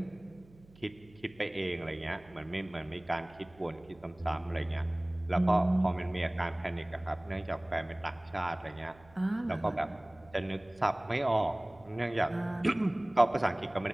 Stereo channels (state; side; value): noise; right; hum, 26 dB below the sound